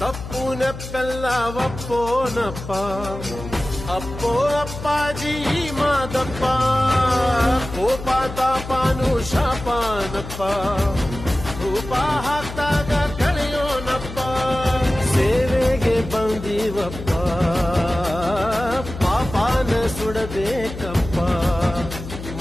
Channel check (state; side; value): noise; left; hum, 10 dB below the sound